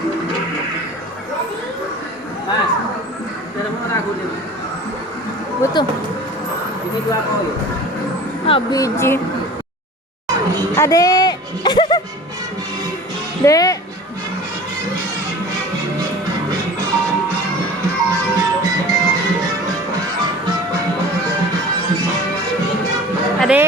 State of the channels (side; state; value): both; normal; correlation 0.41